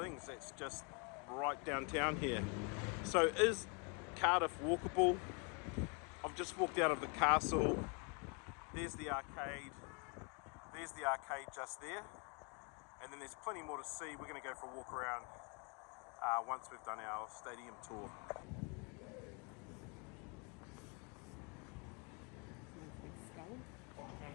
that's just right downtown here. So is Cardiff walkable? I've just walked out of the castle. There's the arcade just there, and then there's plenty more to see. We're going to go for a walk around once we've done our stadium tour. Nice big skull.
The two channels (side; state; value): right; quieter; 33.9 dB